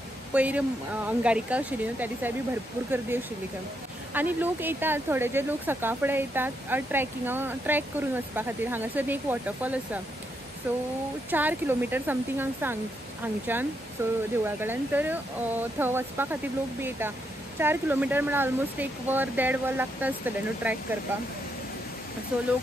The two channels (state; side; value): normal; both; correlation 0.79